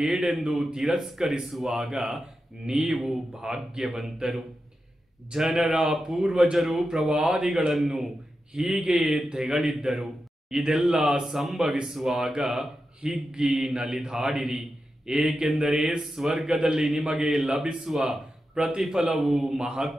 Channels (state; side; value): normal; both; correlation 0.90